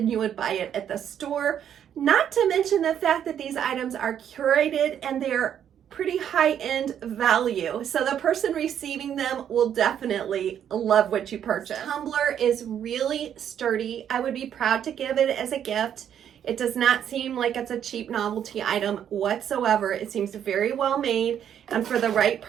you would buy it at the store. Not to mention the fact that these items are curated and they're pretty high-end value. So the person receiving them will definitely love what you purchase. This tumbler is really sturdy. I would be proud to give it as a gift. It does not seem like it's a cheap novelty item whatsoever. It seems very well made, and for the right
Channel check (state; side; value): quieter; left; 9.4 dB